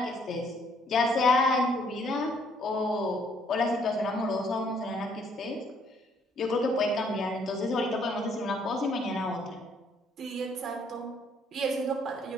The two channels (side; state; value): both; normal; correlation 0.66